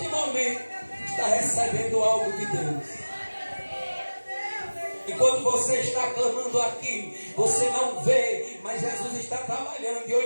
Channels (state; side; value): inverted; both; correlation -1.00